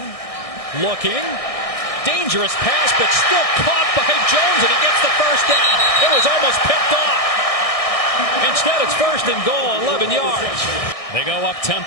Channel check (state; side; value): late; right; 1.6 ms